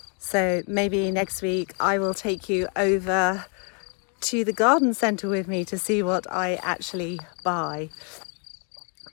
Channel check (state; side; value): quieter; right; 39.7 dB